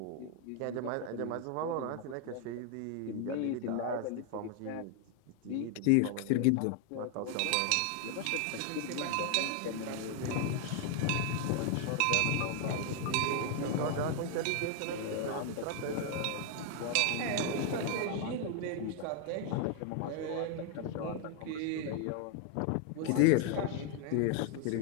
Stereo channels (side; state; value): both; different; correlation 0.00